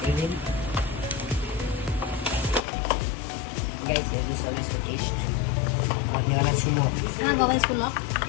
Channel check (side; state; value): right; drops out; at 2.6 s